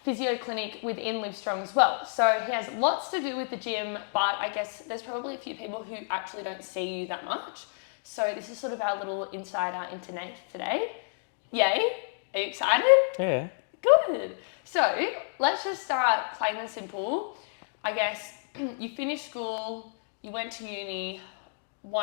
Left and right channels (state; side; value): silent; right; digital silence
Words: physio clinic within Live Strong as well. So he has lots to do with the gym, but I guess there's probably a few people who actually don't see you that much. So this is sort of our little insider into Nath today. Yay? Are you excited? Yeah. Good. So let's just start plain and simple. I guess you finished school, you went to uni.